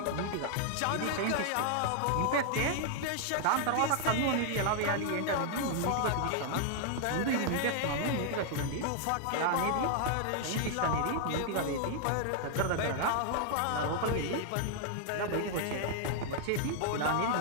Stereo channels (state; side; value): different; both; correlation 0.00